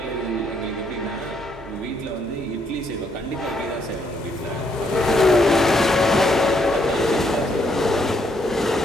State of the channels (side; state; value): both; normal; correlation 0.73